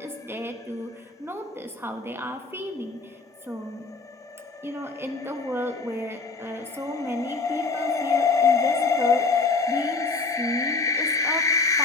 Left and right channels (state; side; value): quieter; right; 3.9 dB